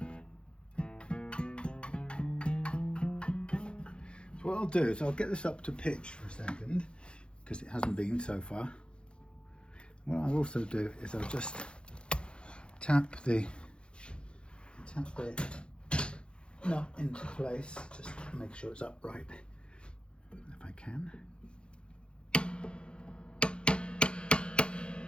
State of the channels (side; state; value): right; late; 0.054 ms